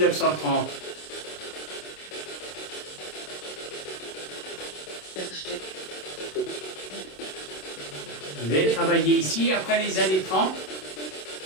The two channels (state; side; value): late; right; 27 ms